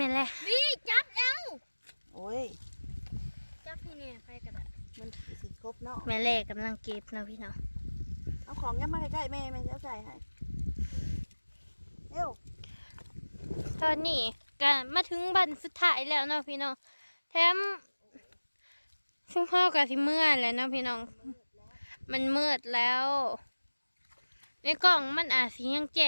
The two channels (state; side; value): inverted; both; correlation -1.00